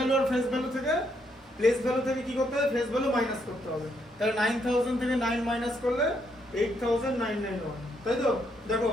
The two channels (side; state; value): both; normal; correlation 0.75